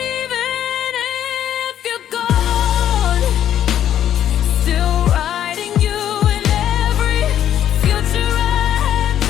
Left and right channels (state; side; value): quieter; right; 10.7 dB